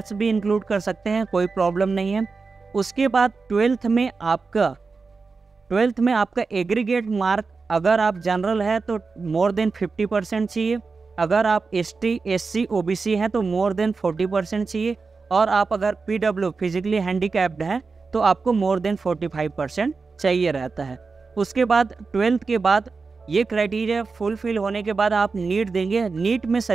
भी इंक्लूड कर सकते हैं, कोई प्रॉब्लम नहीं है। उसके बाद 12th में आपका एग्रीगेट मार्क, अगर आप जनरल है तो मोर देन 50% चाहिए, अगर आप एसटी एससी ओबीसी हैं तो मोर देन 40% चाहिए, और आप अगर पीडब्ल्यू फिजिकली हैंडीकैप्ड हैं तो आपको मोर देन 45% चाहिए रहता है। उसके बाद 12th के बाद ये क्राइटेरिया फुलफिल होने के बाद आप नीट देंगे। नीट में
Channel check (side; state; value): left; quieter; 4.5 dB